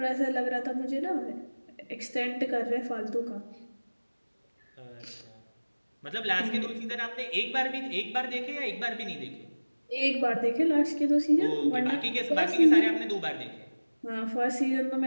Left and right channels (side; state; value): both; inverted; correlation -1.00